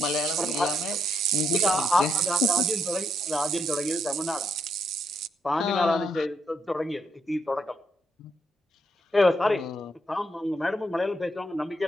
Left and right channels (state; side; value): normal; both; correlation 0.76